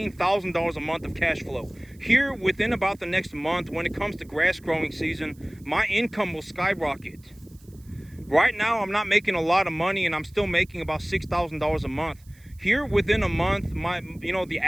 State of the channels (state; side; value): noise; right; hiss, 29 dB below the sound